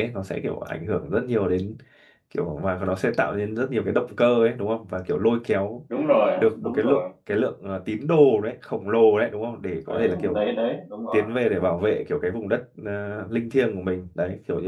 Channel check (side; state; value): both; identical; correlation 1.00